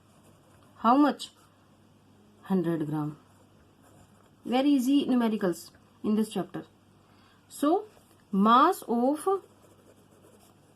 How much? 100 gram. Very easy numericals in this chapter. So mass of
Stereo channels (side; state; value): both; identical; correlation 1.00